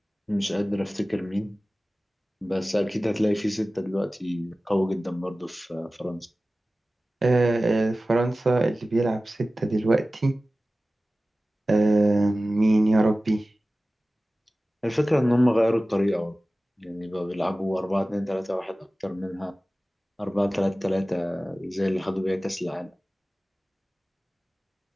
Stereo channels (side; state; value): both; normal; correlation 0.96